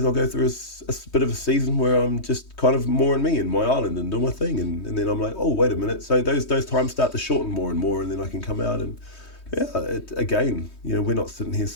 I'll go through a bit of a season where I'm just kind of more in me, in my island, and do my thing. And then I'm like, oh, wait a minute. So those times start to shorten more and more, and then I can come out and, yeah, again, you know, we're not sitting here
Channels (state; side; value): late; right; 3.2 ms